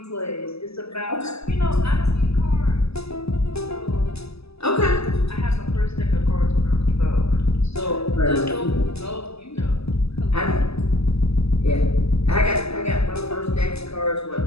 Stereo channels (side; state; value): right; late; 0.78 ms